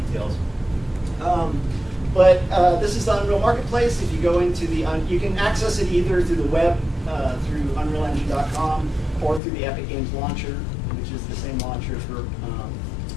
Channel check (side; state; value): right; drops out; at 9.4 s